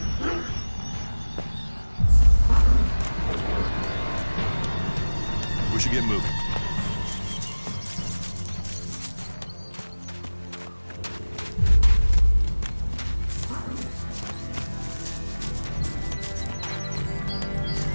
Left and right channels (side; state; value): both; inverted; correlation -1.00